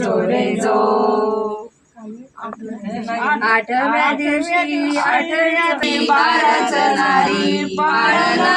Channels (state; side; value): identical; both; correlation 1.00